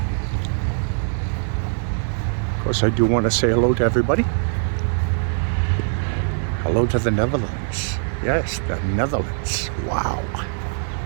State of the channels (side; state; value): left; silent; digital silence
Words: Of course, I do want to say hello to everybody. Hello to the Netherlands. Yes, the Netherlands. Wow.